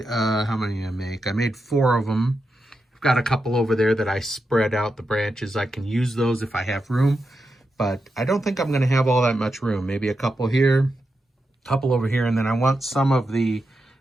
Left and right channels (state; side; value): normal; both; correlation 0.87